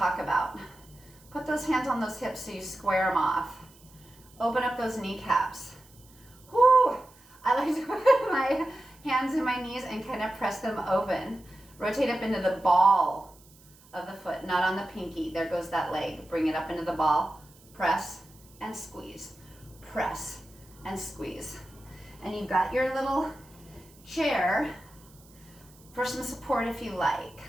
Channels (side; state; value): right; noise; hiss, 26 dB below the sound